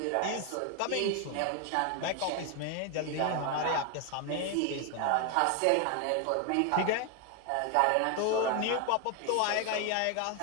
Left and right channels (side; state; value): both; different; correlation 0.01